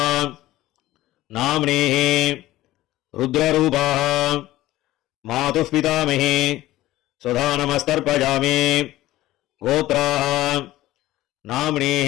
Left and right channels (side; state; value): right; quieter; 16.1 dB